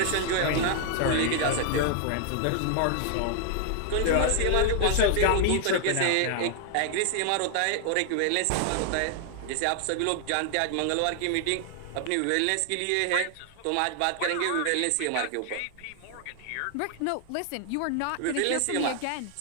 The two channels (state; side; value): different; both; correlation 0.00